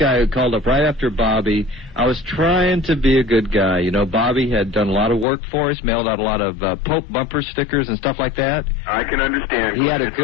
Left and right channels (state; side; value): drops out; right; at 5.2 s